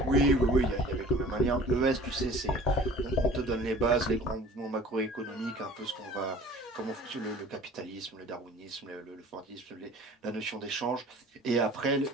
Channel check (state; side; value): normal; both; correlation 0.45